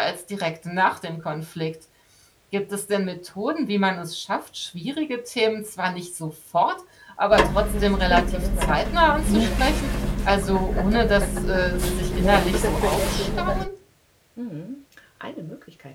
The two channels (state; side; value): identical; both; correlation 1.00